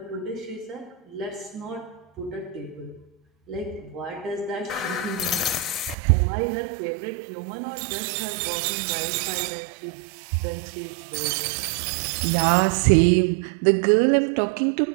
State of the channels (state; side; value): drops out; left; at 6.0 s